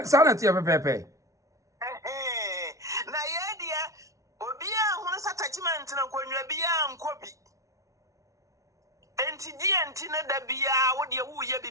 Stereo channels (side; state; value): left; late; 0.16 ms